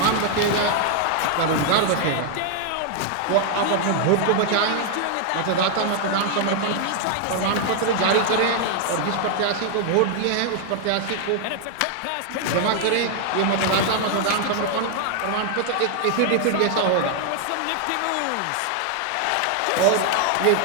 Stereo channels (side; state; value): both; different; correlation 0.00